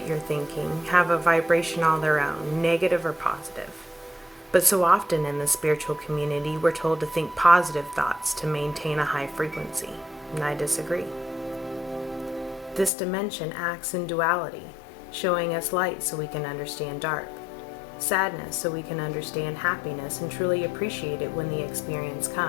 you're thinking have a vibration all their own, negative or positive. But so often in the spiritual community, we're told to think positive thoughts to maintain a high frequency, and I disagree. This dimension acts in duality, showing us light so we can understand dark, sadness so we can understand happiness and truly appreciate it when the experience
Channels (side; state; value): right; drops out; at 12.9 s